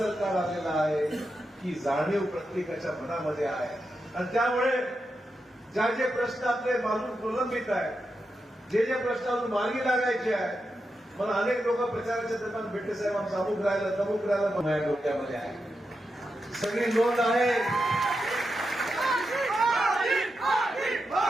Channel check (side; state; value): both; normal; correlation 0.87